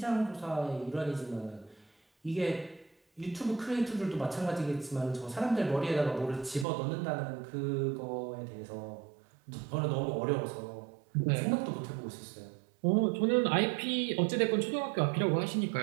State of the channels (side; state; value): left; drops out; at 6.7 s